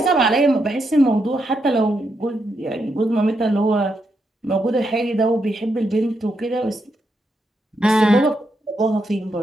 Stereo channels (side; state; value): both; normal; correlation 0.82